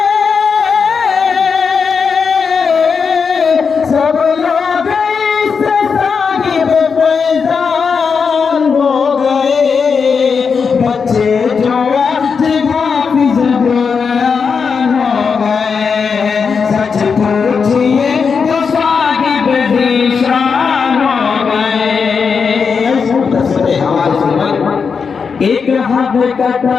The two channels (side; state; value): right; quieter; 5.7 dB